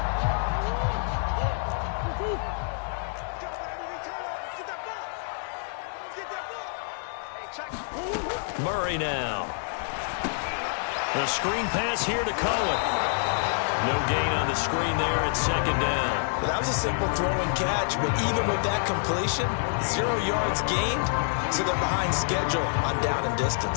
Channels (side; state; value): right; silent; digital silence